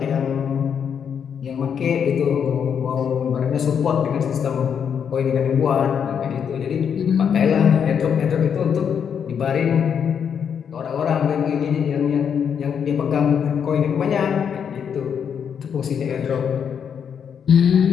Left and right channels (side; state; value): right; quieter; 7.6 dB